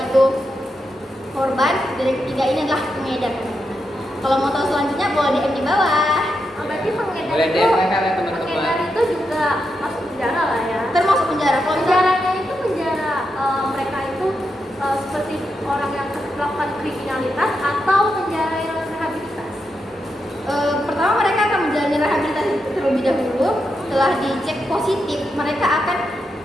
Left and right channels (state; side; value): normal; both; correlation 0.85